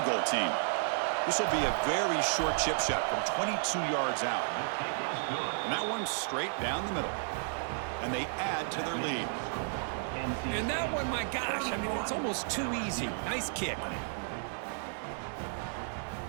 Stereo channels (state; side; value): silent; left; digital silence